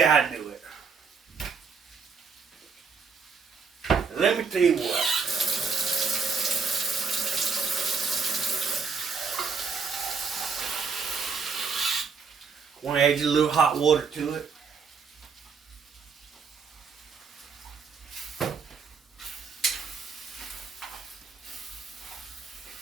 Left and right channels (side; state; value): left; quieter; 5.4 dB